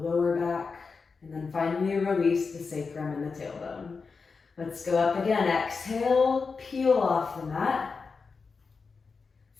back, and then finally release the sacrum and the tailbone. Let's go up again. Exhale, peel off the mat.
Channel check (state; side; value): quieter; right; 4.8 dB